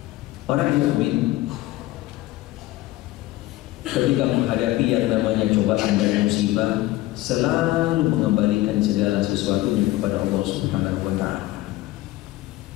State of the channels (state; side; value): quieter; right; 17.1 dB